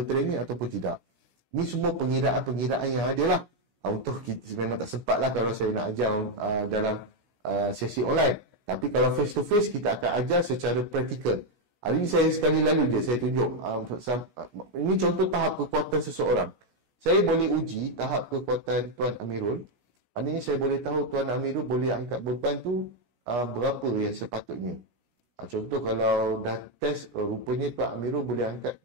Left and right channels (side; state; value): left; late; 17 ms